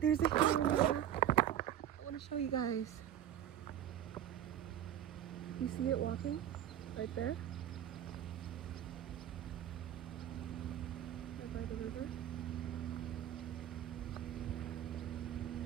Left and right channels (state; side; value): quieter; left; 10.7 dB